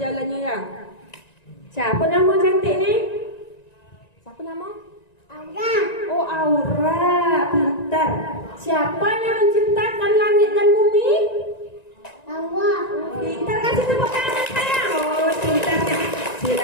ya. Siapa nama cantik ni? Siapa nama? Aura. Oh, Aura, pintar. Siapa yang menciptakan langit dan bumi? Allah. Pintar kan? kasih tepuk tangan saya. Oh, pintarnya.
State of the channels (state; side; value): late; right; 1.9 ms